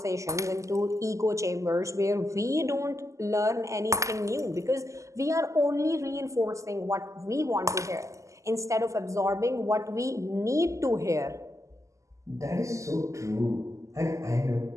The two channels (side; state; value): left; late; 0.15 ms